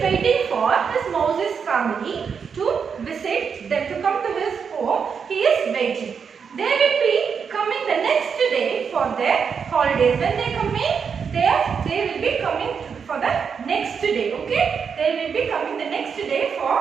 waiting for his Mouse's family to visit them, to come to his home. He is waiting. They will be coming the next day for their holidays. When they come in, they will be coming for the next day, okay? They will be coming the next day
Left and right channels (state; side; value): quieter; left; 6.4 dB